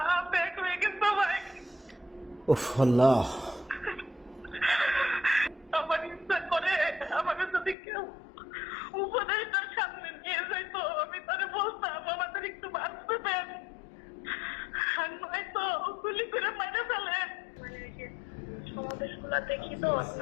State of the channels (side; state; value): right; drops out; at 7.8 s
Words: ব্যাগ হয়ে গেছে ভাই। উফ আল্লাহ। আমার ইচ্ছা করে আমাকে যদি কেউ উপদেশটার সামনে নিয়ে যাইতো, আমি তারে বলতাম আমাদের একটু বাঁচতে দেন, আর নয়তো গুলি করে মেরে ফেলেন। মানে ওই যে সমাবেশগুলো দেখি তো,